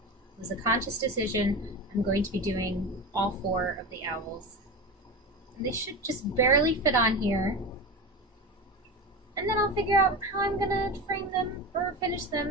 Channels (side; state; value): both; normal; correlation 0.25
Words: It was a conscious decision. I'm going to be doing all four of the owls. And they should just barely fit on here. And then I'll figure out how I'm going to frame them or finish